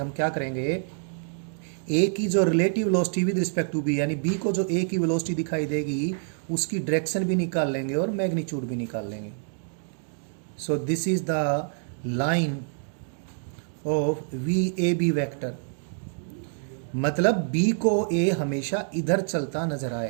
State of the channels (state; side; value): silent; left; 60 dB below the other